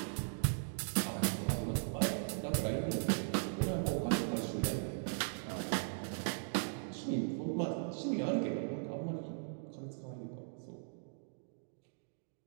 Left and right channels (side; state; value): left; silent; digital silence